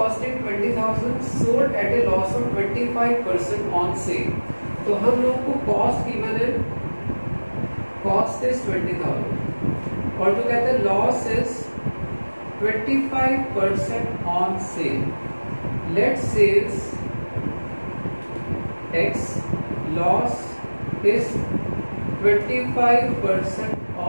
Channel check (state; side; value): inverted; both; correlation -1.00